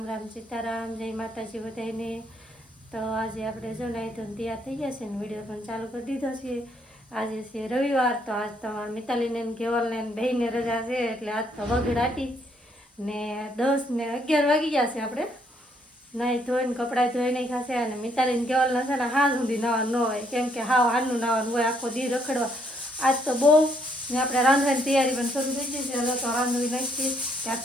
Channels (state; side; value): normal; both; correlation 0.70